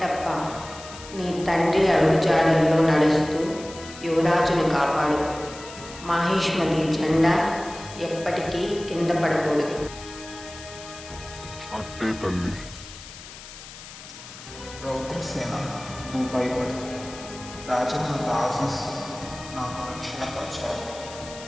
నీ తండ్రి అడుగుజాడల్లో నడుస్తూ యువరాజును కాపాడు. మాహిష్మతి జెండా ఎప్పటికీ కింద పడకూడదు. అట్టే తల్లి. రౌద్రసేన, నువ్వు భయపడు. రాజమాత ఆశీస్సు నాకు రక్షణ కవచాలు.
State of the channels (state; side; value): noise; left; hiss, 15 dB below the sound